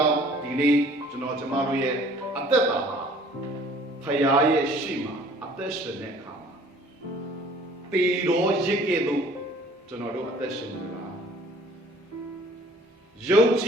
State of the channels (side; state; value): both; normal; correlation 0.53